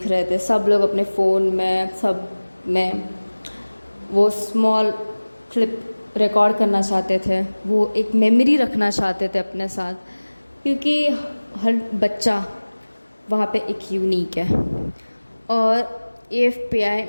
रहे थे, सब लोग अपने फ़ोन में, सब में वो स्मॉल क्लिप रिकॉर्ड करना चाहते थे, वो एक मेमोरी रखना चाहते थे अपने साथ, क्योंकि हर बच्चा वहाँ पे एक यूनिक है और AFPI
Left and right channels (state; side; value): inverted; both; correlation -1.00